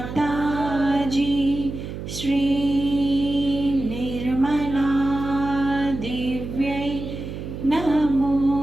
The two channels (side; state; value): right; noise; hum, 8 dB below the sound